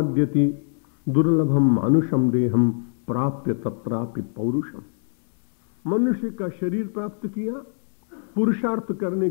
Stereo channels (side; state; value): right; silent; digital silence